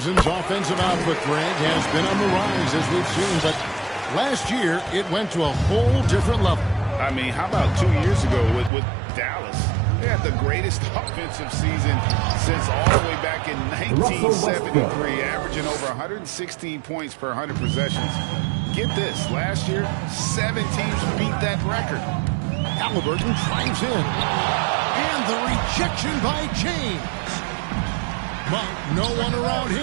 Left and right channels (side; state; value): left; drops out; at 8.7 s